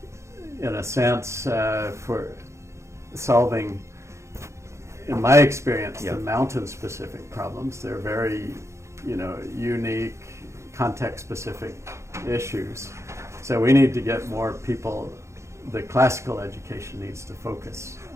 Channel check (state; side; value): late; left; 0.14 ms